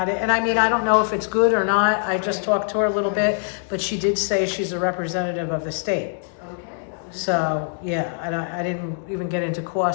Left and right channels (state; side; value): silent; right; digital silence